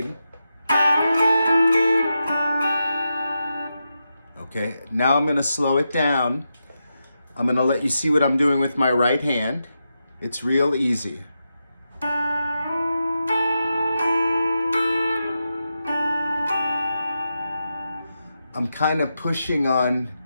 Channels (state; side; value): inverted; both; correlation -0.88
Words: Okay, now I'm going to slow it down. I'm going to let you see what I'm doing with my right hand. It's real easy. I'm kind of pushing on